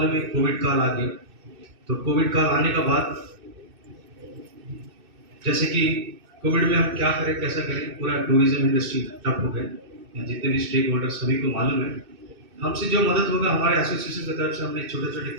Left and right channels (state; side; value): late; left; 2.6 ms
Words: है कोविड काल आ गया। तो कोविड काल आने का बाद जैसे कि कोविड में हम क्या करें, कैसा करें, पूरा टूरिज्म इंडस्ट्री ठप हो गया। जितने भी स्टेक होल्डर सभी को मालूम है, हमसे जो मदद होगा हमारे एसोसिएशन की तरफ से हमने छोटे छोटे